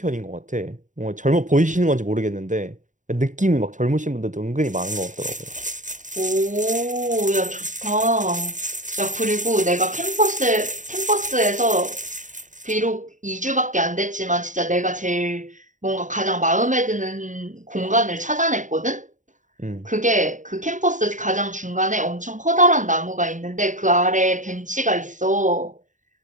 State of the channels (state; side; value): late; left; 0.36 ms